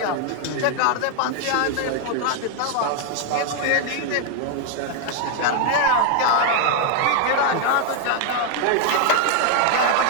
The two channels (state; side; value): different; both; correlation 0.00